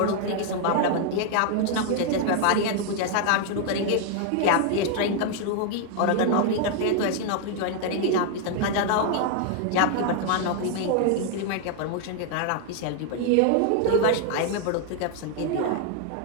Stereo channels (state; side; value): different; both; correlation 0.00